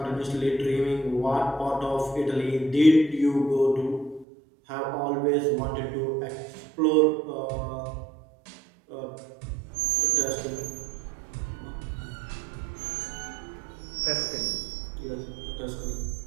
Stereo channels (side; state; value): left; drops out; at 4.2 s